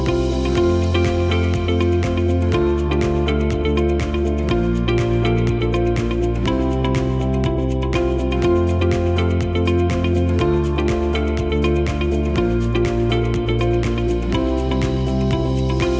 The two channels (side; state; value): both; identical; correlation 1.00